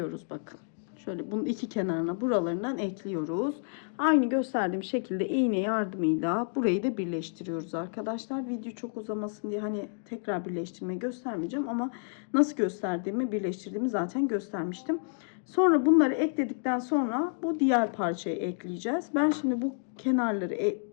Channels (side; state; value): right; silent; digital silence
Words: bakın. Şöyle bunun iki kenarına buralarından ekliyoruz. Aynı gösterdiğim şekilde iğne yardımıyla burayı da birleştiriyoruz arkadaşlar. Video çok uzamasın diye hani tekrar birleştirmeyi göstermeyeceğim ama nasıl gösterdiğimi birleştirdiğimi zaten göstermiştim. Sonra bunları ekledikten sonra bu diğer parçayı ekleyeceğiz. Ben şimdi bu kenarları